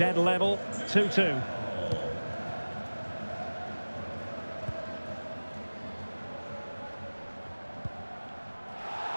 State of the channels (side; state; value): both; inverted; correlation -1.00